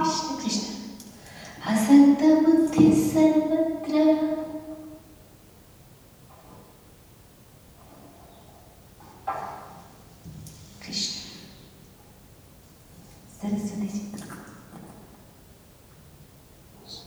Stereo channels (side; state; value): both; identical; correlation 1.00